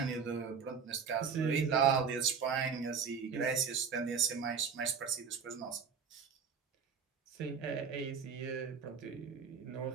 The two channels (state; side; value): quieter; left; 6.3 dB